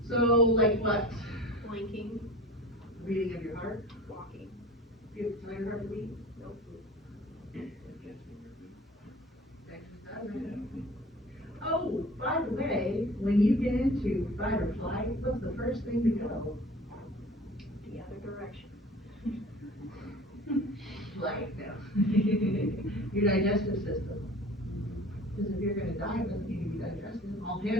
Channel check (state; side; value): normal; both; correlation 0.42